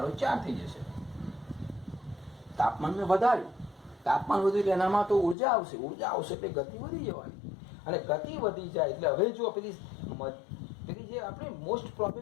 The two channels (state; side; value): drops out; right; at 5.4 s